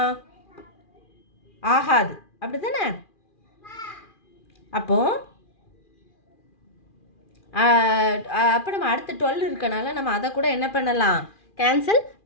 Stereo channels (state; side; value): late; right; 2.4 ms